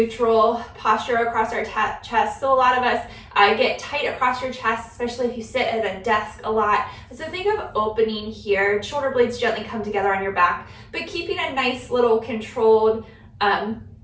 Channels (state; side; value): identical; both; correlation 1.00